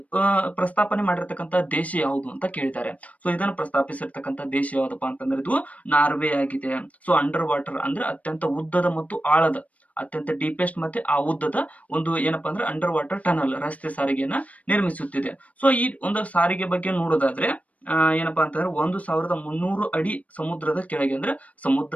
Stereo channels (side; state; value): right; late; 0.069 ms